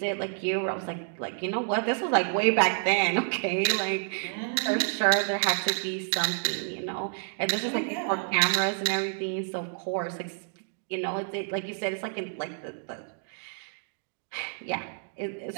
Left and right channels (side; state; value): left; silent; digital silence